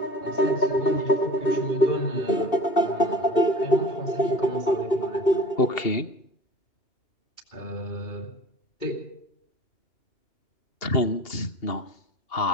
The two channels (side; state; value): right; late; 2.8 ms